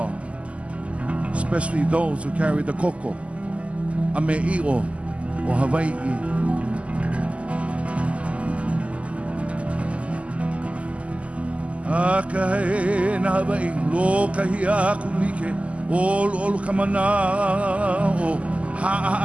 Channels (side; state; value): left; late; 0.063 ms